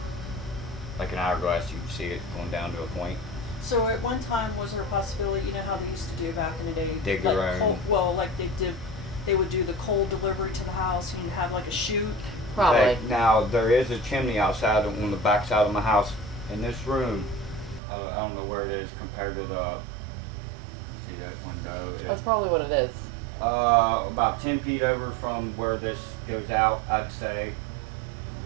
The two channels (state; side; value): drops out; left; at 17.8 s